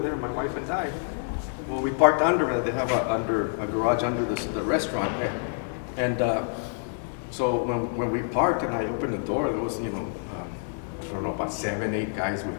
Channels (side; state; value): right; silent; digital silence